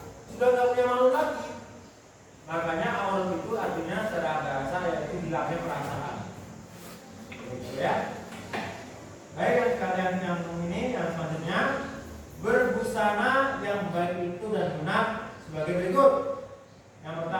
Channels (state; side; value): identical; both; correlation 1.00